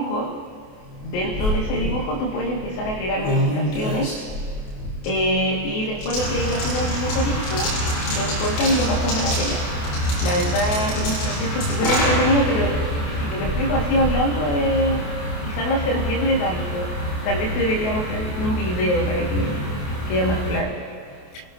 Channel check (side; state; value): right; late; 28 ms